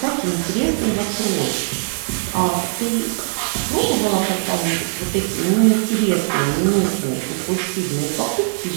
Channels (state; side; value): silent; left; digital silence